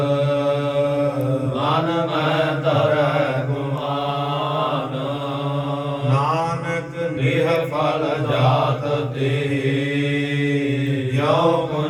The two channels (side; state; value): both; identical; correlation 1.00